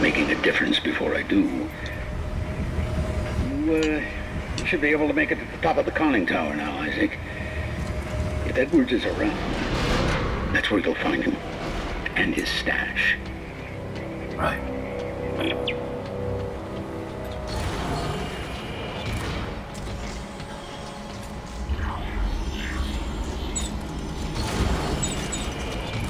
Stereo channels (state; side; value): identical; both; correlation 1.00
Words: a difference before I do. You should be able to make it to the top of the conning tower now, Isaac. If Edwards is around, that's where you'll find him. And his stash. Right.